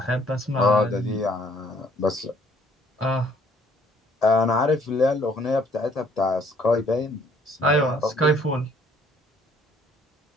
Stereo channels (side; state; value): both; normal; correlation 0.61